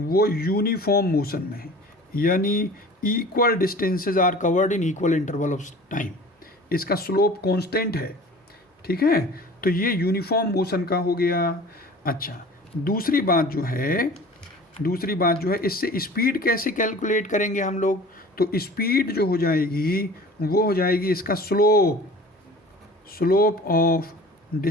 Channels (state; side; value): normal; both; correlation 0.43